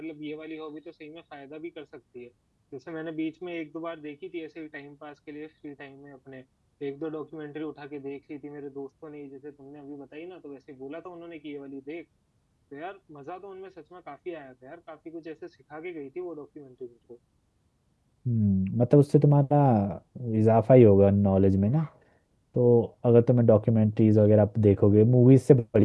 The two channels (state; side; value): identical; both; correlation 1.00